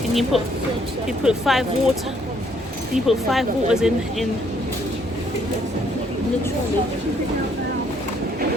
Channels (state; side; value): normal; both; correlation 0.67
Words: you put 5 water? Can you put 5 waters in the trolley?